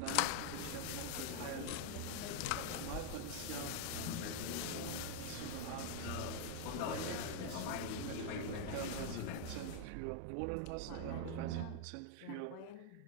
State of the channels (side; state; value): both; different; correlation 0.00